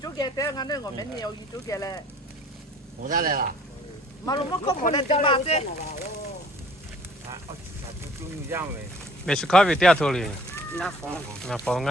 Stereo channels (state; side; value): normal; both; correlation 0.53